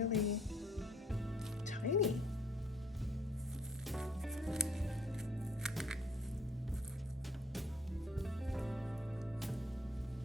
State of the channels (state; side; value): normal; both; correlation 0.62